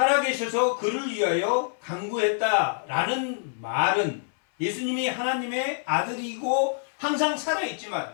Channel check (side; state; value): right; silent; 61 dB below the other